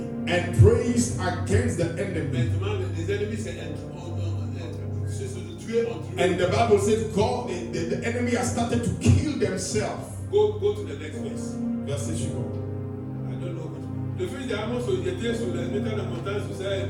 and praised against the enemy. Maintenant, les ennemis, c'est se tuer entre eux. And the Bible says God, the enemy has started to kill themselves. Go to the next verse. Verset suivant. I don't know. Le fils d'Amos était sur les métal de montagne, sur ça,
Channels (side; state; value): both; identical; correlation 1.00